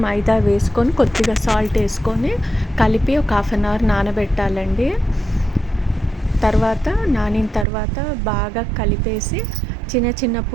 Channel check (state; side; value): drops out; left; at 7.7 s